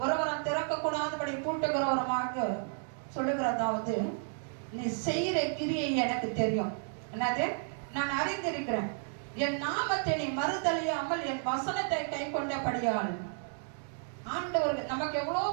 ஒருவரும் திறக்கக்கூடாதபடி பூட்டுகிறவருமாக சொல்லுகிறதாவது, நீ செய்கிற கிரியை எனக்கு தெரியும். என்னது? நான் அறிந்திருக்கிறேன். என் நாமத்தை நீ மறுதலியாமல் என் வசனத்தை கை கொண்டபடியால். ஆண்டவருக்கு நமக்கு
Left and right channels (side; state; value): left; silent; 56 dB below the other